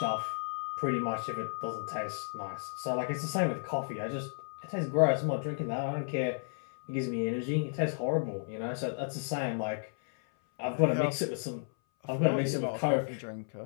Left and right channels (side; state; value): right; silent; 56 dB below the other